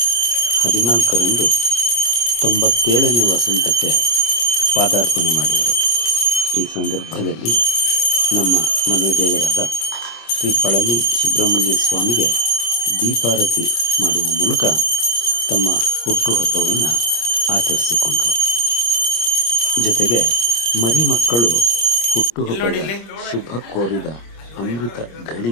14ರಂದು 97ನೇ ವಸಂತಕ್ಕೆ ಪಾದಾರ್ಪಣೆ ಮಾಡಿದರು. ಈ ಸಂದರ್ಭದಲ್ಲಿ ನಮ್ಮ ಮನೆ ದೇವರಾದ ಶ್ರೀ ಪಳನಿ ಸುಬ್ರಹ್ಮಣ್ಯ ಸ್ವಾಮಿಗೆ ದೀಪಾರತಿ ಮಾಡುವ ಮೂಲಕ ತಮ್ಮ ಹುಟ್ಟುಹಬ್ಬವನ್ನು ಆಚರಿಸಿಕೊಂಡರು. ಜೊತೆಗೆ ಮರಿಮಕ್ಕಳು ಹುಟ್ಟುಹಬ್ಬದ ಶುಭ ಕೋರಿದ ಅಮೃತ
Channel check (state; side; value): late; right; 26 ms